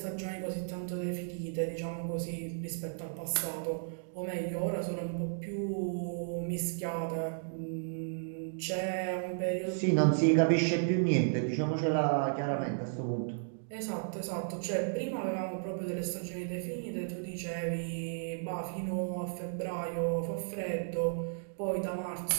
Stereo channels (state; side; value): silent; left; digital silence